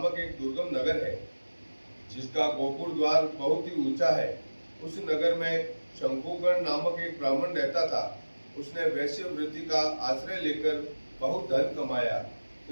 एक दुर्गम नगर है, जिसका गोपुर द्वार बहुत ही ऊंचा है। उस नगर में शंकुकर्ण नामक एक ब्राह्मण रहता था। उसने वैश्य वृत्ति का आश्रय लेकर बहुत धन कमाया,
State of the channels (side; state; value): both; inverted; correlation -1.00